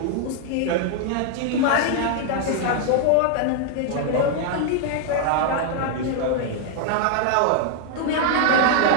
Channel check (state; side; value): different; both; correlation 0.00